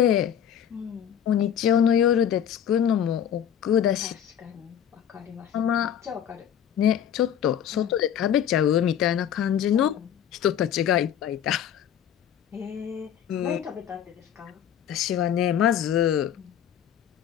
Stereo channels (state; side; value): quieter; right; 9.4 dB